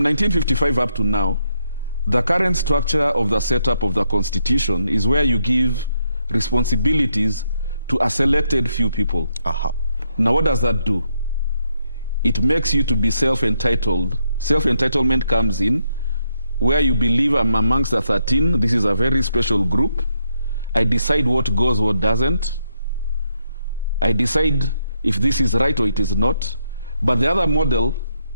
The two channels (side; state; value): both; inverted; correlation -0.78